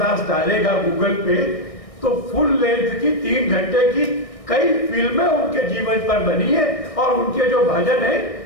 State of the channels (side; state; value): right; late; 1.6 ms